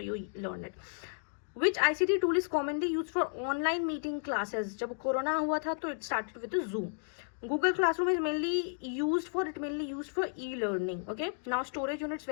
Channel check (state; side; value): silent; right; digital silence